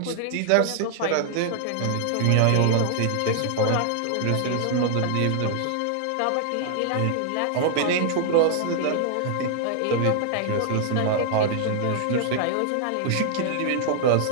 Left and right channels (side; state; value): both; different; correlation 0.00